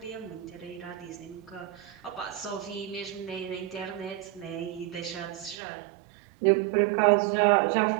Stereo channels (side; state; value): left; drops out; at 5.6 s